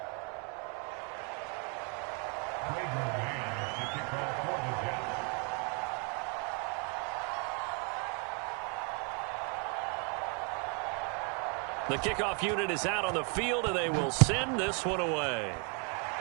The kickoff unit is out on the field, and they will send this one away.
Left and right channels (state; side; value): quieter; left; 36.5 dB